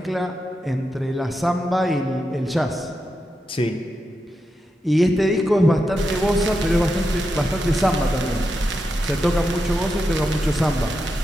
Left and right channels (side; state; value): both; normal; correlation 0.87